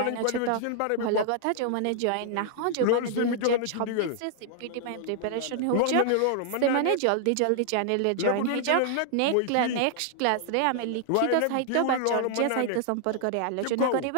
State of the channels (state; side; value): different; both; correlation -0.01